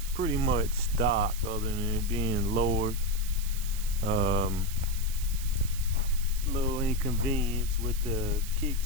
pretty much stock other than it being lowered. A little inconvenience with the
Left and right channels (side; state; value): right; noise; hiss, 11 dB below the sound